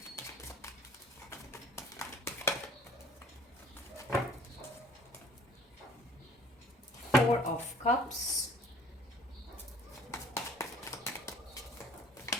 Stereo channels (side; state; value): both; normal; correlation 0.53